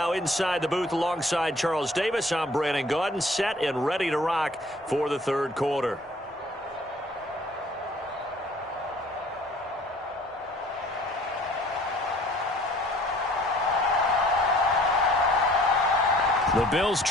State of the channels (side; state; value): both; normal; correlation 0.54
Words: inside the booth alongside Charles Davis. I'm Brandon Gaudin, set and ready to rock for the third quarter. The Bills